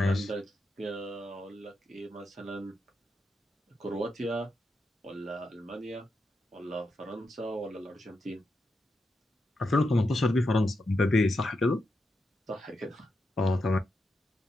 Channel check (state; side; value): normal; both; correlation 0.86